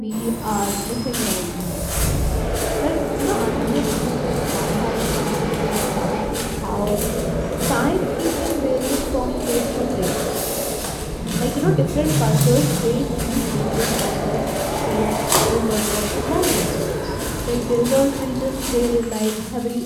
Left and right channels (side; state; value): both; identical; correlation 1.00